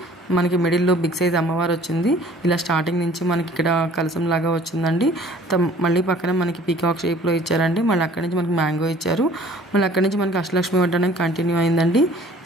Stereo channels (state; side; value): normal; both; correlation 0.52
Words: మనకి మిడిల్లో బిగ్ సైజ్ అమ్మవారు వచ్చింది. ఇలా స్టార్టింగ్ నుంచి మనకి ఇక్కడ కలసం లాగా వచ్చిందండి. మళ్ళీ పక్కన మనకి పీకాక్ షేప్లో ఇచ్చారండి. మళ్ళీ అక్కడి నుంచి మనకి మ్యాంగో ఇచ్చారు. మళ్ళీ అక్కడి నుంచి మనకి అష్టలక్ష్మి వడ్డాణం కంటిన్యూ అయిందండి.